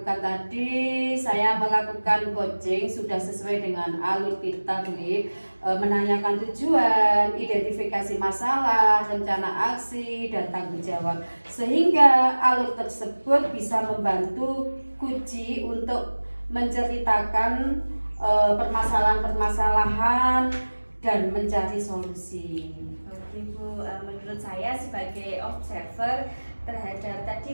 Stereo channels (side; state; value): both; inverted; correlation -1.00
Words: tadi, saya melakukan coaching sudah sesuai dengan alur kita, Liv. Menanyakan tujuan, identifikasi masalah, rencana aksi, dan tanggung jawab, sehingga alur tersebut bisa membantu Kuci untuk menceritakan permasalahan-permasalahan dan mencari solusi. Oke Bu, menurut saya sebagai observer terhadap